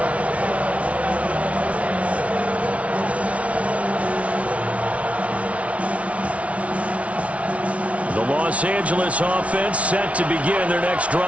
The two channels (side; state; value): left; late; 0.064 ms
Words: The Los Angeles offense set to begin their next